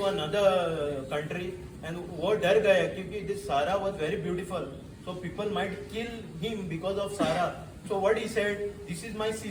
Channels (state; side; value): identical; both; correlation 1.00